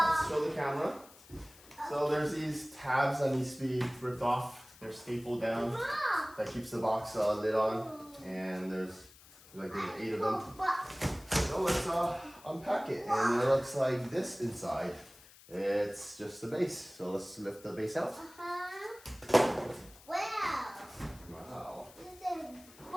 show the camera. So there's these tabs that needs to be ripped off. They're stapled down. That keeps the box lid on. And there's 8 of them. So let's unpack it. And it looks like this inside. It's just the base. So let's lift the base out. Wow. Wow. This is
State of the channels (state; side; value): noise; left; hiss, 22 dB below the sound